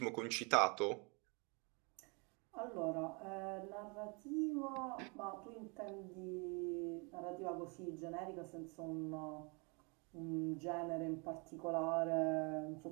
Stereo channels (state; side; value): quieter; left; 32.2 dB